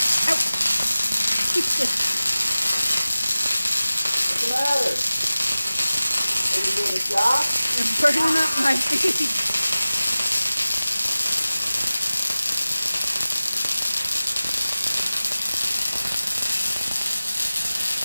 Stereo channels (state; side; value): inverted; both; correlation -0.97